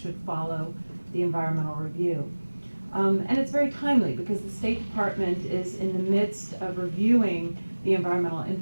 follow the environmental review. And it's very timely because the State Department is in the midst of reviewing the environmental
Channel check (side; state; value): both; inverted; correlation -1.00